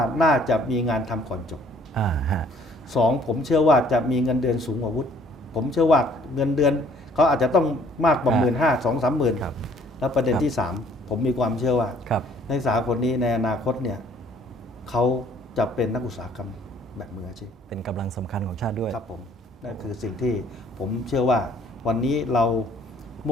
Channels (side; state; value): both; normal; correlation 0.59